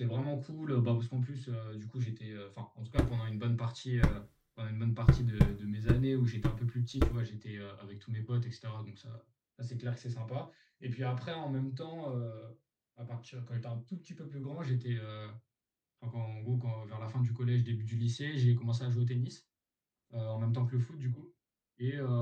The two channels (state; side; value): identical; both; correlation 1.00